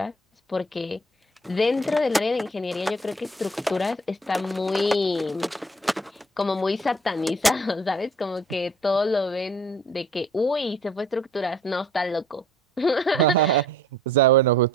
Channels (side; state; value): both; normal; correlation 0.54